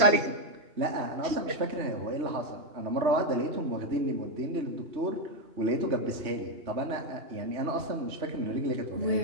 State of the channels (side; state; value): left; late; 3.2 ms